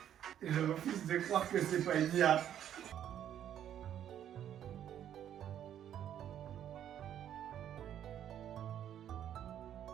Je refuse de croire que c'est pas une IA.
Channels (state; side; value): quieter; left; 10.3 dB